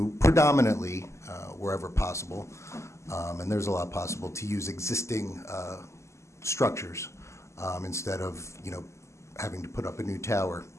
predominantly, wherever possible, and there's a lot possible, to use existing structures instead of, having to put up a new tower.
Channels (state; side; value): late; right; 0.13 ms